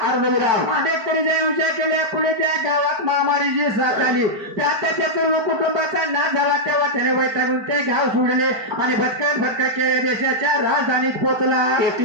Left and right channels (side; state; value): left; late; 4.5 ms